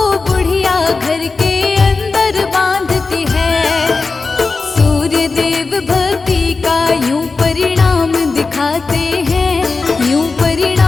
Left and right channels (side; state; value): right; quieter; 4.1 dB